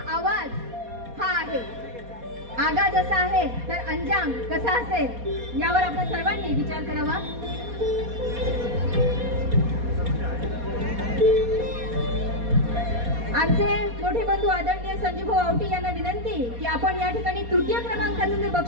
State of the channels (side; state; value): left; late; 4.2 ms